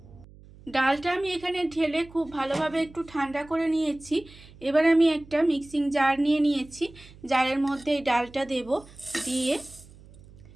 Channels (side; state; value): right; noise; hum, 22 dB below the sound